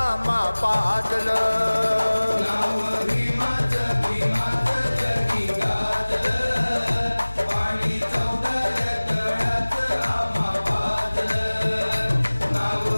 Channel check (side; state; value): both; inverted; correlation -1.00